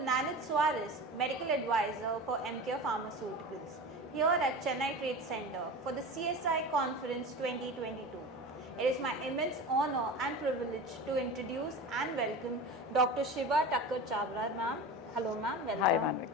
Suarez, Medical Advisor for EMCURE Pharmaceuticals, here at Chennai Trade Center for the CSI Conference 2022. It is my immense honor and privilege to introduce and welcome Dr. Shibba Chhabra, ma'am. Hello ma'am, welcome. Hi Manvik,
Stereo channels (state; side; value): normal; both; correlation 0.31